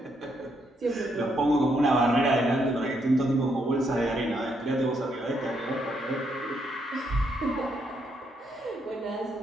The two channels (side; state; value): both; normal; correlation 0.76